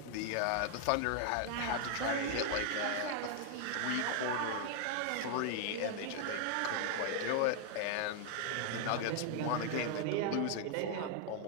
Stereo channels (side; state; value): both; different; correlation 0.00